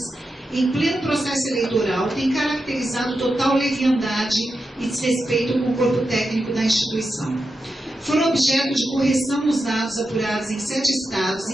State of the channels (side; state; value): both; normal; correlation 0.89